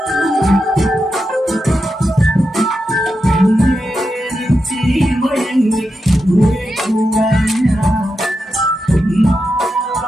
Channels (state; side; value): normal; both; correlation 0.88